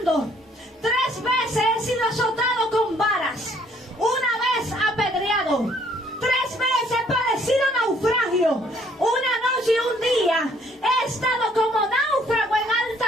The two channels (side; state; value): both; normal; correlation 0.63